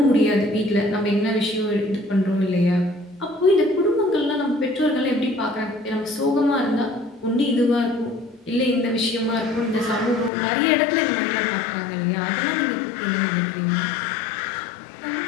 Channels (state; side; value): drops out; right; at 10.3 s